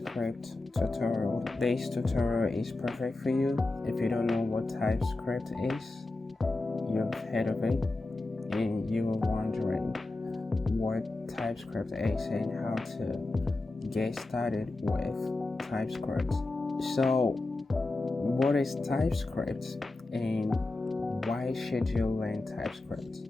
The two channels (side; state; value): right; quieter; 3.1 dB